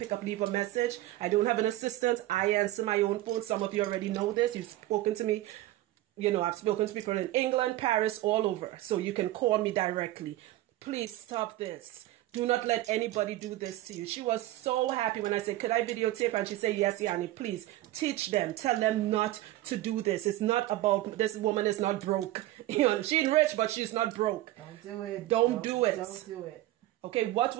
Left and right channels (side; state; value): left; quieter; 16.0 dB